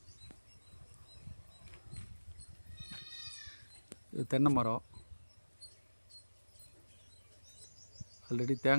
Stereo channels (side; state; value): both; inverted; correlation -1.00